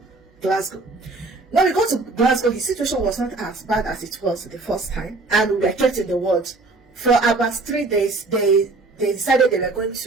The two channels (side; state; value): left; quieter; 3.4 dB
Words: Glasgow. When we got to Glasgow, his situation was not as bad as it was the first time. And we were kept in the ward. For about 3 days, they decided they were going